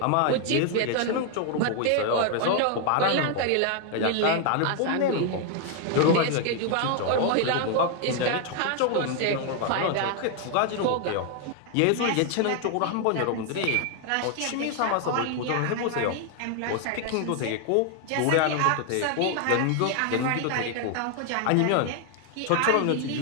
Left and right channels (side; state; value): both; different; correlation 0.00